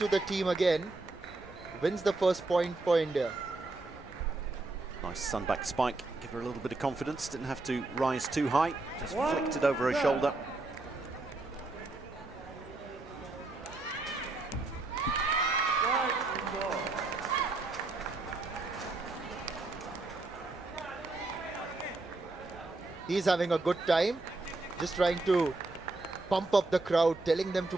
the team again, wins the first point for India. Nice sunback spike, give her a little bit of confidence, didn't have to rise too high, just flicked it over her shoulder. He's having a good time, just trying to pump up the crowd, telling them to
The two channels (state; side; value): quieter; left; 3.2 dB